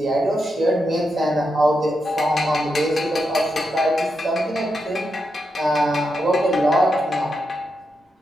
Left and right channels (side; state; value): both; normal; correlation 0.85